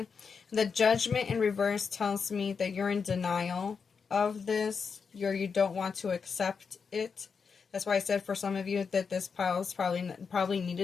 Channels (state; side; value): quieter; right; 5.7 dB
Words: the Judgment in reverse tells me that you're in denial of this. You don't want to accept it. That's why I said for some of you that this pile is probably